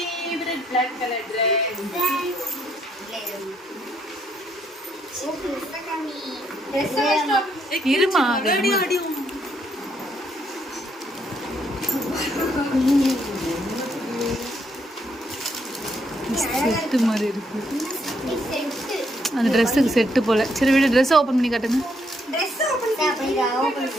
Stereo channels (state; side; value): normal; both; correlation 0.73